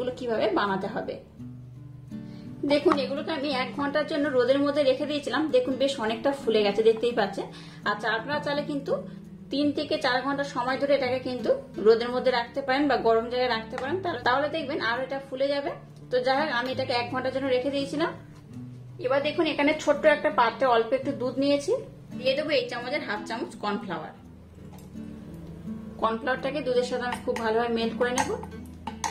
কিভাবে বানাতে হবে। দেখুন এগুলোকে আমি 1 ঘন্টার জন্য রোদের মধ্যে রেখে দিয়েছিলাম, দেখুন বেশ অনেকটা ফুলে গেছে দেখতেই পাচ্ছেন। আচ্ছা আপনারা চাইলে কিন্তু 3 থেকে 4 ঘন্টা সময় ধরে এটাকে কিন্তু রোদের মধ্যে রাখতে পারেন বা গরম জায়গায় রাখতে পারেন, তাহলে দেখবেন আরো এটা ফুলে যাবে। তো যাই হোক আমি এটাকে 1 ঘন্টার জন্য রেখে দিয়েছিলাম। এবার দেখুন এখানে ছোট্ট একটা পাত্রে অল্প একটু দুধ নিয়েছি, দিয়ে দেবো এই চামচের 1/2 চামচ কর্নফ্লাওয়ার। কর্নফ্লাওয়ারটাকে দুধের সাথে আমি খুব ভালোভাবে মেল্ট করে নেব।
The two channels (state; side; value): identical; both; correlation 1.00